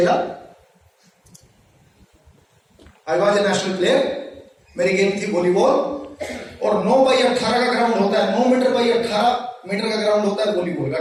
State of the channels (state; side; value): identical; both; correlation 1.00